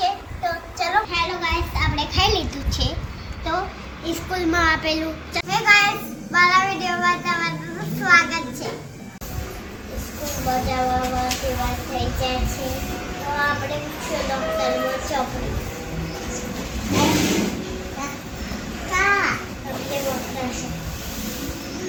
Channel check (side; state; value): both; identical; correlation 1.00